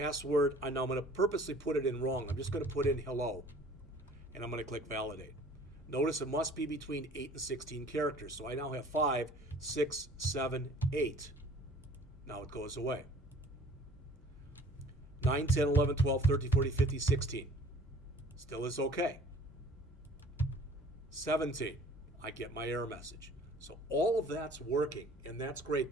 Now I'm going to purposely put it in wrong. I'm just going to put in hello, and I'm going to click validate. Notice it must be between 8 and 16 characters. So I now have 5, 6, 7, 8. Now it goes away. 9, 10, 11, 12, 13, 14, 15, 16. Still is okay. 17. I get my error message. So all of that's working, and that's great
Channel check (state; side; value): normal; both; correlation 0.51